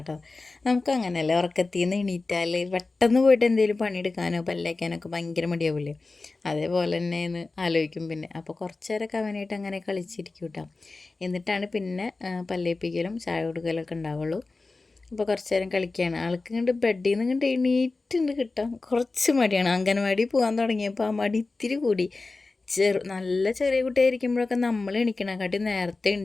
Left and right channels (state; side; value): quieter; right; 3.6 dB